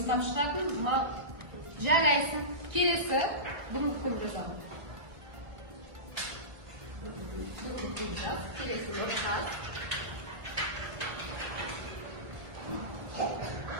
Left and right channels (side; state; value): left; late; 1.5 ms